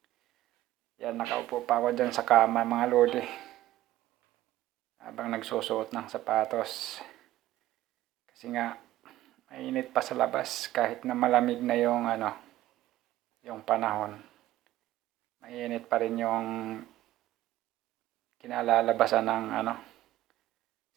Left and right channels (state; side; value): quieter; left; 15.0 dB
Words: Yan, nakaupo pa ako dyan sa kama mga lodi. Habang nagsusuot ng sapatos. Kasi nga, mainit pa sa labas kahit na malamig na yung yung panahon. Mainit pa rin yung kinalalabasan ng